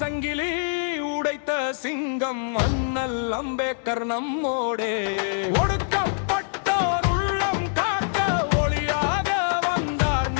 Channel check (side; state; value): right; silent; 62 dB below the other